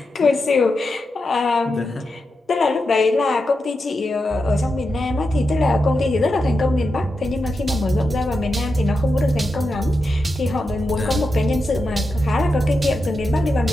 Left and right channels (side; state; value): both; normal; correlation 0.88